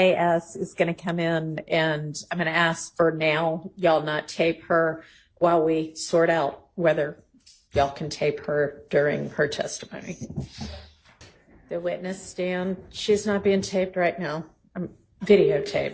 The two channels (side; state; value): both; identical; correlation 1.00